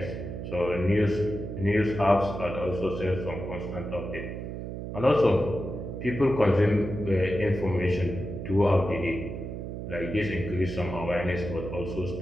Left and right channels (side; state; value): right; noise; hum, 7 dB below the sound